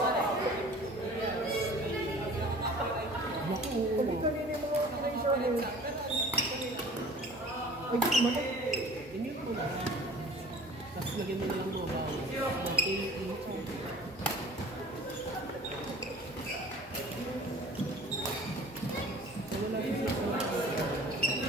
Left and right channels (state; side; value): normal; both; correlation 0.46